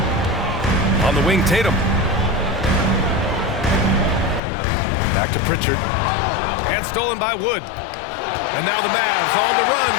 On the wing, Tatum. Back to Pritchard. And stolen by Wood. And now the Mavs on the run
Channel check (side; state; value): right; drops out; at 4.4 s